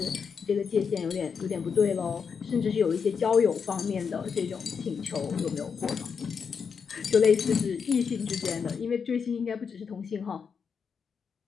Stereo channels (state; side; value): quieter; right; 6.2 dB